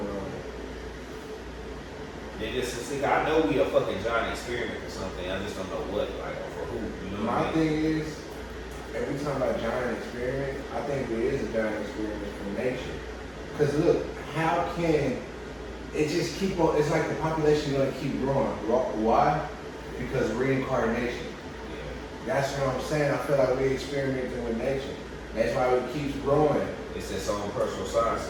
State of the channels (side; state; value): both; identical; correlation 1.00